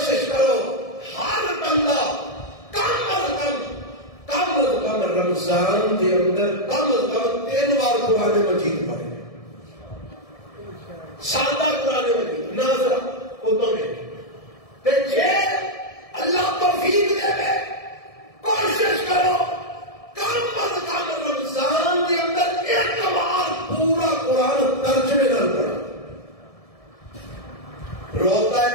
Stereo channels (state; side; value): late; right; 1.7 ms